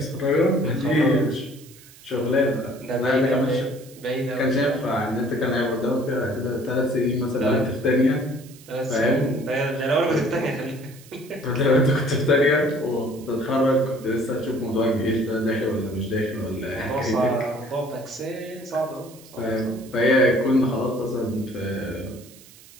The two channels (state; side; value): noise; right; hiss, 22 dB below the sound